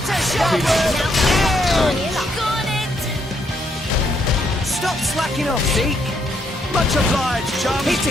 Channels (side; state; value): both; normal; correlation 0.74